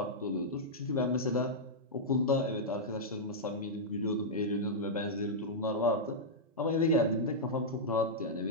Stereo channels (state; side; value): normal; both; correlation -0.08